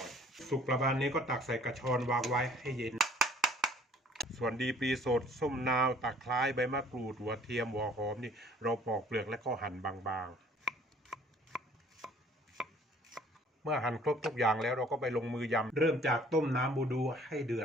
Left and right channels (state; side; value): normal; both; correlation 0.55